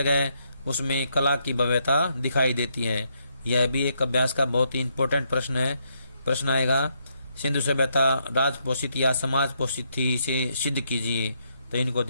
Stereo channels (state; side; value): inverted; both; correlation -0.76